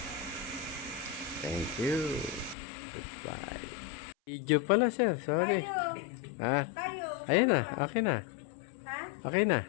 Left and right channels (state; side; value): drops out; right; at 2.6 s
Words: thank you. Goodbye. Video pala, sir. Sorry. Kayo. Ha? Kayo. Ayun na. Okay na. Ha? Okay na.